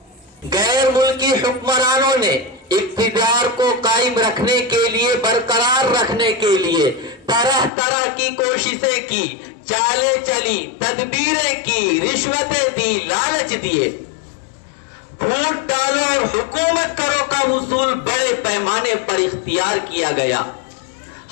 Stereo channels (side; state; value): right; drops out; at 7.7 s